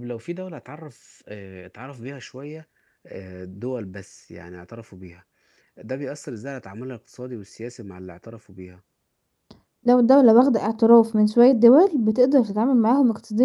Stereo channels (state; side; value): identical; both; correlation 1.00